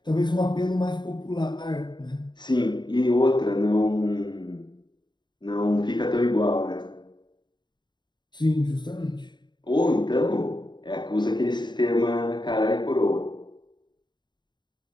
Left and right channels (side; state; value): right; late; 0.22 ms